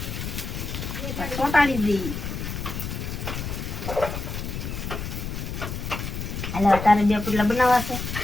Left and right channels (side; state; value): left; noise; rumble, 5 dB below the sound